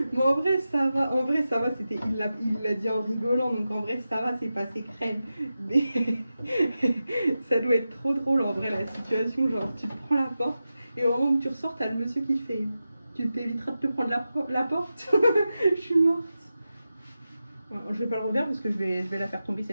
Mais en vrai ça va, c'était, il l'a dit en rigolant, donc en vrai ça va, c'est passé crème. Mais ça doit être trop drôle en vrai la situation, genre tu te prends la porte et au moment où tu ressors, t'as le monsieur qui fait « Tu t'éviteras de te prendre la porte. » Je suis morte. Je vais pas le refaire parce que je vais la faire tomber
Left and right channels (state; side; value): inverted; both; correlation -0.92